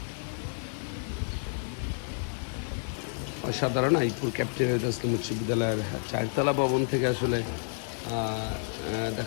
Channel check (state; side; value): silent; right; 58 dB below the other